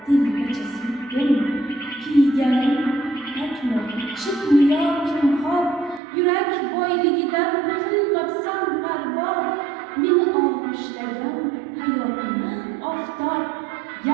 dilgacha suydim, kiyganim takmi chiqmi yo kimxob, yurak boyligidan qilmabsan parvo. Meni og'ishlagan hayotni oftob,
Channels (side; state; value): left; drops out; at 6.0 s